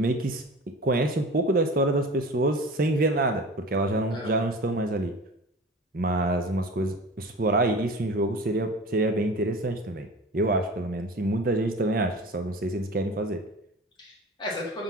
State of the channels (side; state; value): both; normal; correlation 0.36